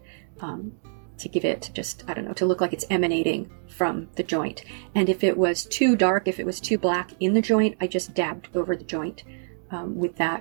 to give it just, to look like it's emanating from the joint. And if it was too dark, if it was too black in the joint, I just dabbed over the joint with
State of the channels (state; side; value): silent; left; digital silence